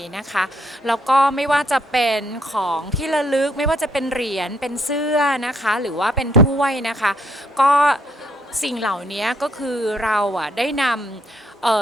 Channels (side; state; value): both; normal; correlation 0.70